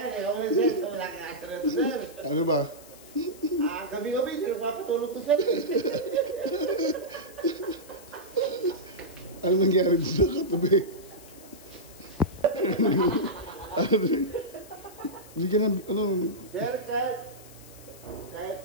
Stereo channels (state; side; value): noise; left; hiss, 20 dB below the sound